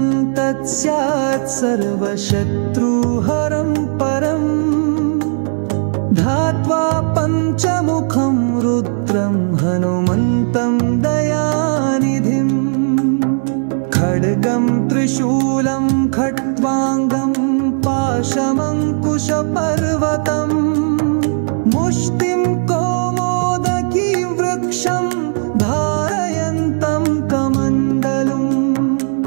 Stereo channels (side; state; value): left; silent; digital silence